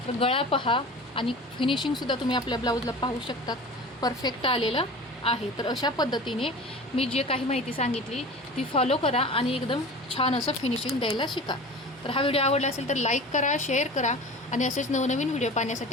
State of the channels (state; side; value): normal; both; correlation 0.37